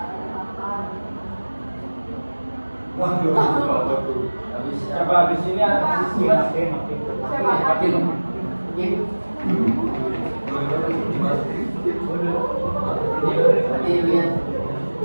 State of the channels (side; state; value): both; inverted; correlation -1.00